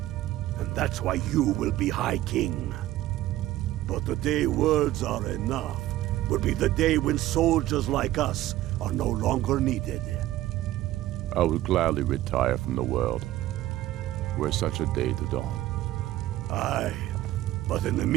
And that's why you will be High King. But the day words are enough will be the day when soldiers like us are no longer needed. I would gladly retire from the world, were such a day to dawn. Aye, but in the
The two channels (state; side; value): quieter; left; 15.0 dB